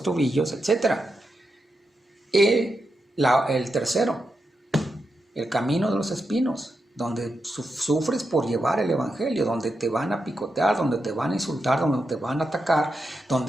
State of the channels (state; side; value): normal; both; correlation 0.86